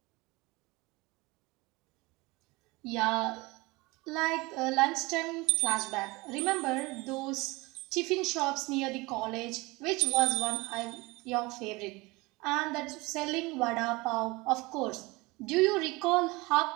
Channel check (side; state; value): left; quieter; 23.3 dB